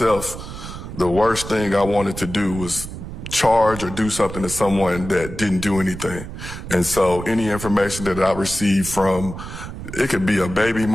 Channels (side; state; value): right; noise; rumble, 10 dB below the sound